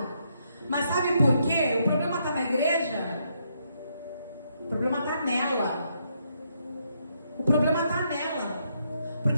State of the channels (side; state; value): both; inverted; correlation -0.76